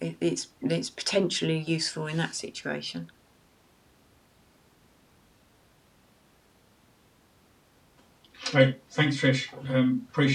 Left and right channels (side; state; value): both; identical; correlation 1.00